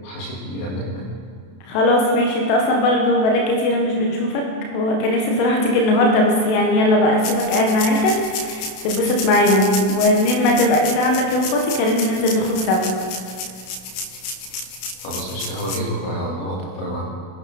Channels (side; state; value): right; late; 32 ms